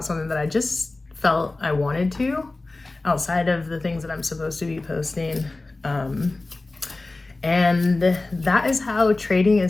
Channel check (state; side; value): quieter; right; 3.2 dB